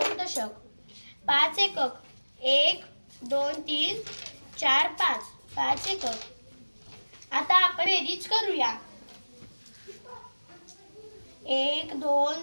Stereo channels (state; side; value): inverted; both; correlation -1.00